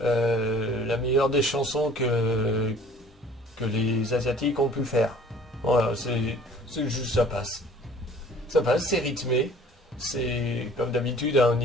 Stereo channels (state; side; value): normal; both; correlation 0.50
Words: meilleure des chansons que les Asiatiques ont pu faire. Voilà, c'est juste ça passe. Ça passe, c'est rythmé. C'est comme d'habitude au